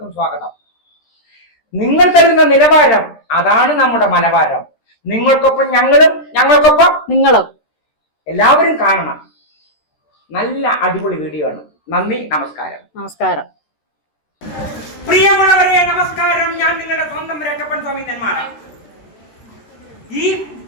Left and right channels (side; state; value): right; late; 13 ms